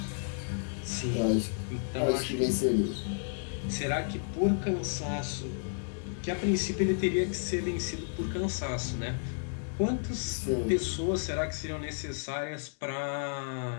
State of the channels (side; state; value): right; silent; digital silence